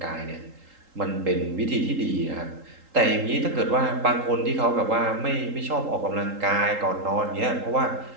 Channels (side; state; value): left; late; 3.8 ms